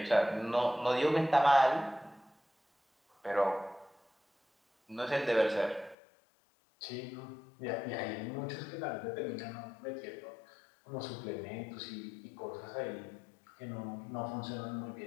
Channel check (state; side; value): drops out; right; at 6.0 s